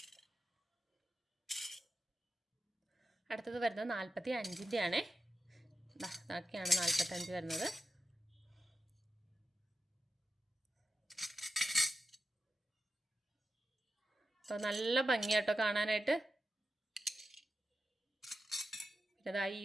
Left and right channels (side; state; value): both; normal; correlation 0.91